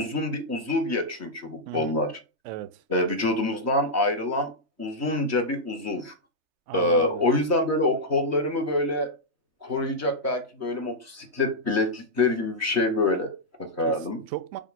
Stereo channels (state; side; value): late; left; 3.1 ms